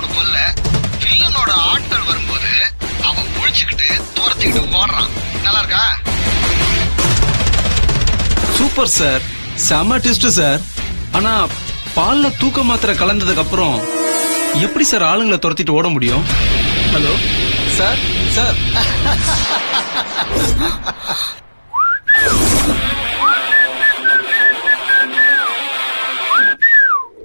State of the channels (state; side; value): inverted; both; correlation -1.00